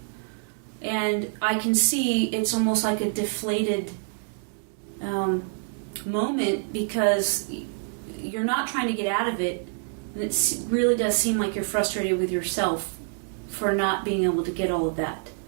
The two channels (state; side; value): silent; left; 61 dB below the other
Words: And I can see it's almost like a deflated moment because you're not trying to get out of it. And it really does seem like you're frustrated with yourself for not being able to get all of that.